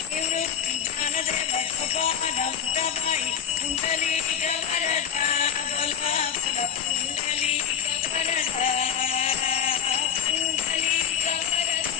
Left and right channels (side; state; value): right; quieter; 8.3 dB